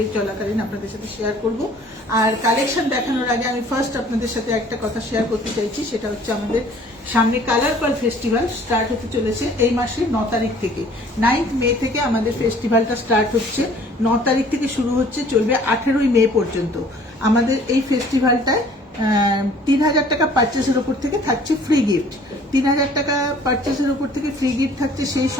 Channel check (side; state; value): both; normal; correlation 0.54